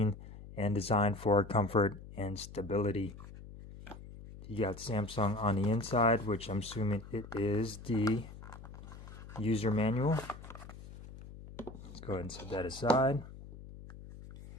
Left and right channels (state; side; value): noise; left; hum, 15 dB below the sound